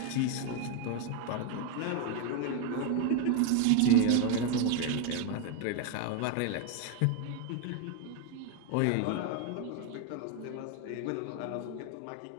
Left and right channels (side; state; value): both; different; correlation 0.01